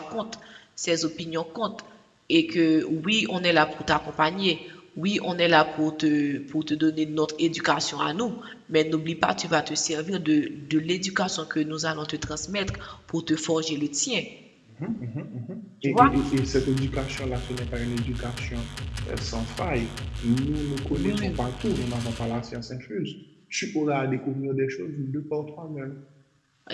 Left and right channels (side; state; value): both; identical; correlation 1.00